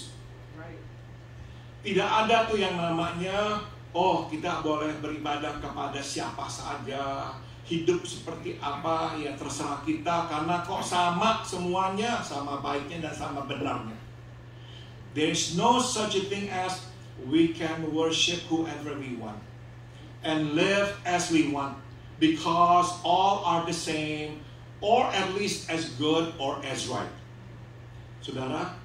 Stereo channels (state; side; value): identical; both; correlation 1.00